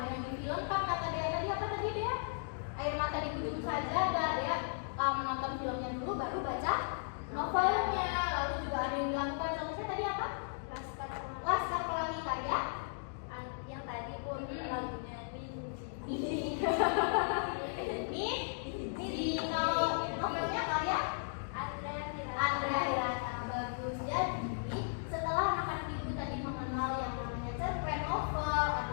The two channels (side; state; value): right; silent; digital silence